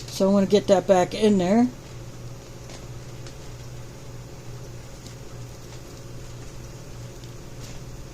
So I want to get that back in there.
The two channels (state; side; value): identical; both; correlation 1.00